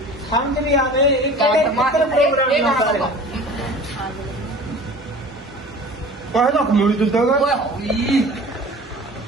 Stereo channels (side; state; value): both; normal; correlation 0.41